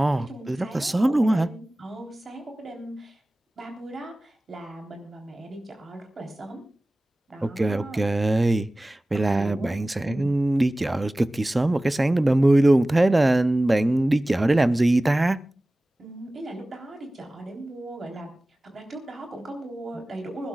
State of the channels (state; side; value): normal; both; correlation 0.98